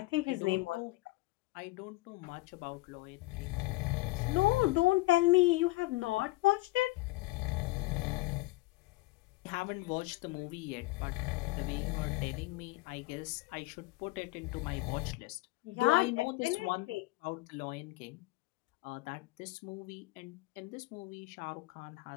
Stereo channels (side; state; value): right; quieter; 21.0 dB